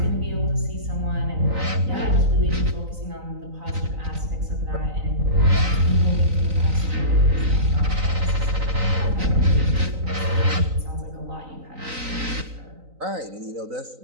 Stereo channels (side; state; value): left; late; 3.9 ms